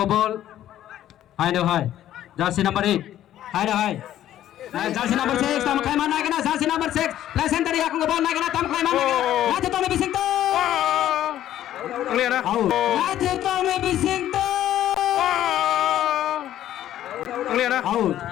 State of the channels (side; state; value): right; quieter; 12.3 dB